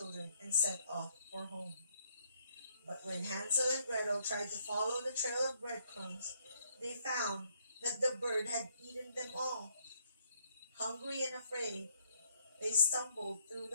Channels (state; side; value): inverted; both; correlation -0.68